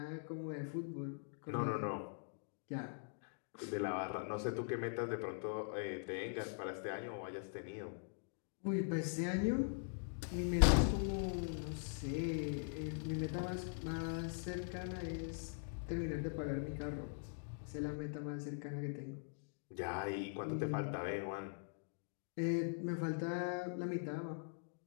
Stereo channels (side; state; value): right; silent; digital silence